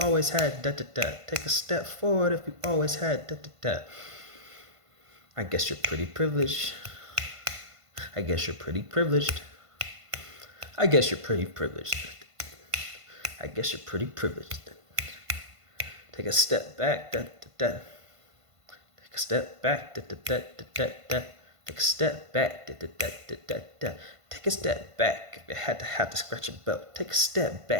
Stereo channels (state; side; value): late; left; 1.5 ms